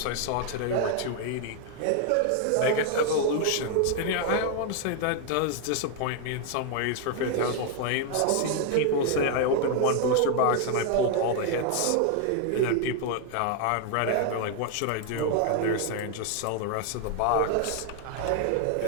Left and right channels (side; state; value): both; different; correlation 0.00